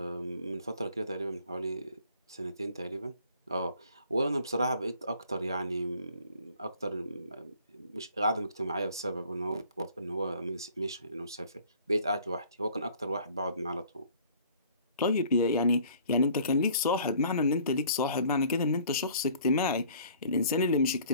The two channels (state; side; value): inverted; both; correlation -0.53